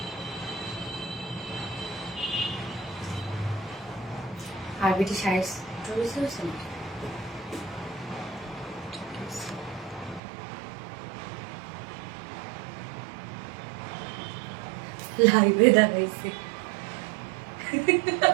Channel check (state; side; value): drops out; left; at 10.2 s